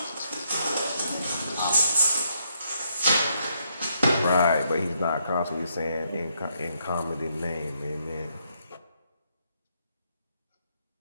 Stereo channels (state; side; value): inverted; both; correlation -0.75